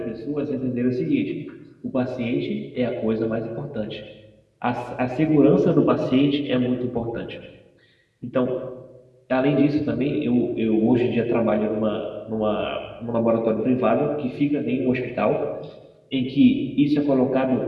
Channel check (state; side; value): identical; both; correlation 1.00